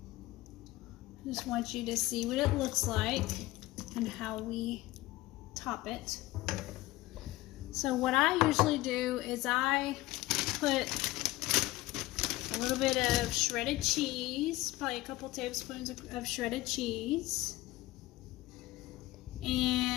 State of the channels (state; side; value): quieter; right; 18.5 dB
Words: I just want you to see what it looks like and how we top it. So what I usually do is I put a little bit of shredded cheese, probably a couple tablespoons of shredded cheese,